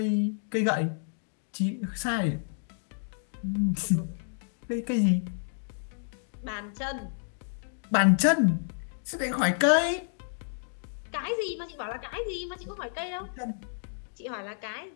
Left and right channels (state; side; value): silent; right; digital silence